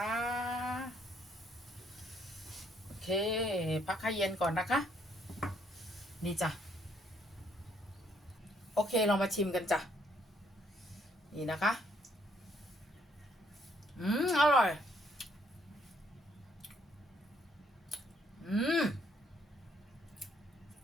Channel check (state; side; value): normal; both; correlation 0.68